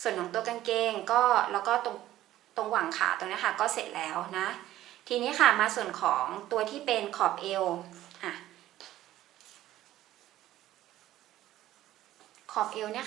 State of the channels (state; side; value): quieter; left; 14.1 dB